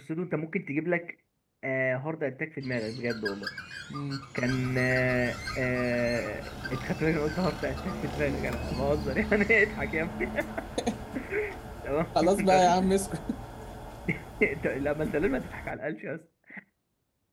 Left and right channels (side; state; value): both; identical; correlation 1.00